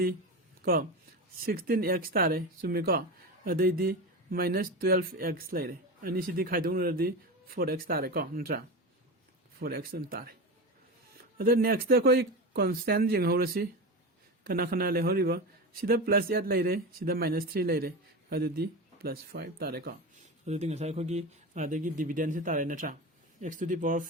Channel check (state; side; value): normal; both; correlation 0.23